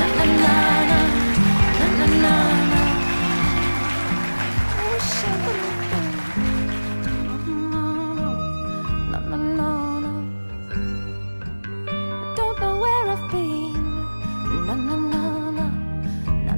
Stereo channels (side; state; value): both; inverted; correlation -1.00